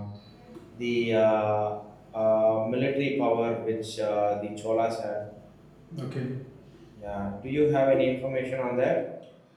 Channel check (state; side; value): identical; both; correlation 1.00